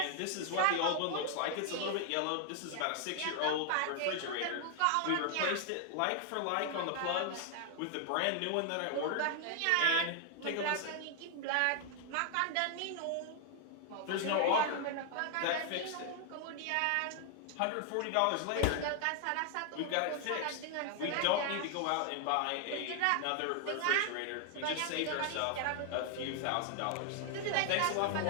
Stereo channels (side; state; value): both; different; correlation 0.00